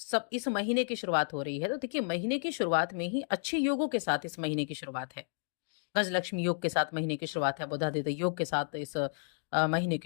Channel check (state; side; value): silent; right; digital silence